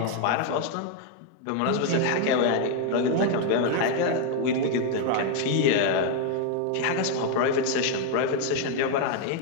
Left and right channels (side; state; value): both; different; correlation 0.01